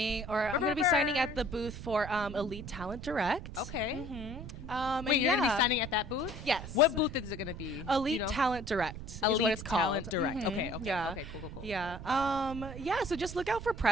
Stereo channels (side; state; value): right; noise; rumble, 10 dB below the sound